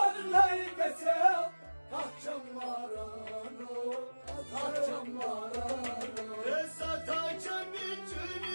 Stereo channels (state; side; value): inverted; both; correlation -1.00